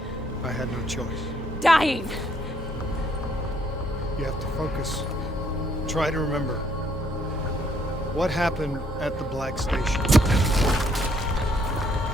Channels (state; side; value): normal; both; correlation 0.68